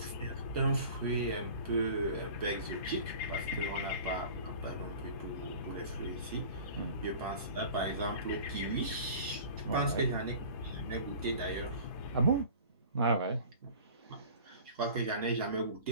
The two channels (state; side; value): inverted; both; correlation -0.42